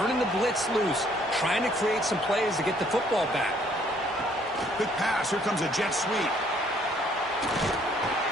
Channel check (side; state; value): both; normal; correlation 0.63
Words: the blitz loose, trying to create some plays to get the football back. Quick pass. Here comes a jet sweep.